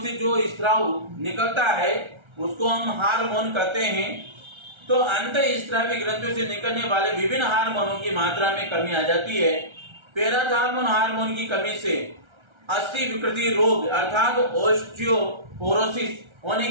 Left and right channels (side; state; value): left; late; 1.3 ms